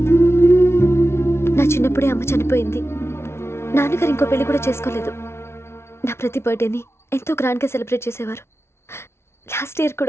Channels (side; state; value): right; late; 0.12 ms